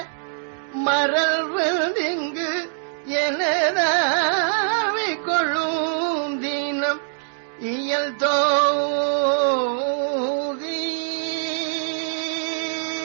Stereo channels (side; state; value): left; silent; digital silence